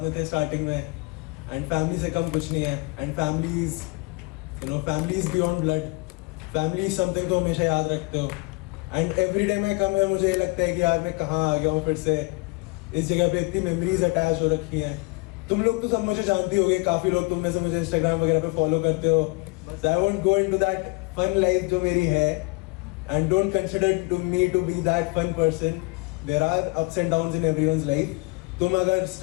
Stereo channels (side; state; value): right; quieter; 27.8 dB